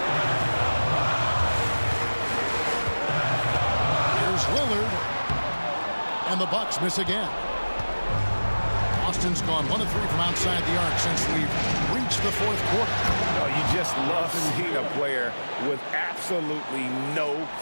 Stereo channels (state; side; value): inverted; both; correlation -1.00